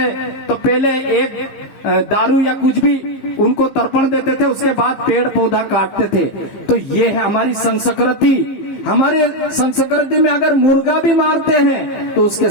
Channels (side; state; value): right; late; 15 ms